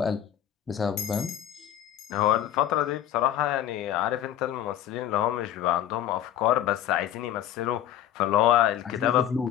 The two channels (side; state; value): right; quieter; 11.0 dB